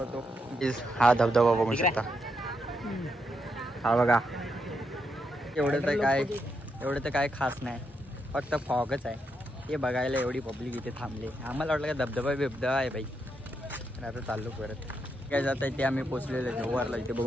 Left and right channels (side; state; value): both; normal; correlation 0.81